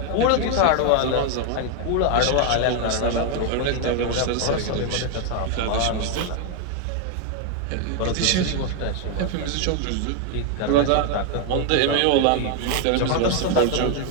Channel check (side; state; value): both; different; correlation 0.01